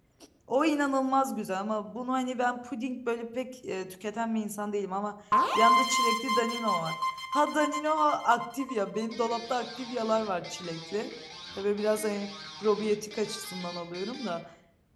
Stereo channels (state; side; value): identical; both; correlation 1.00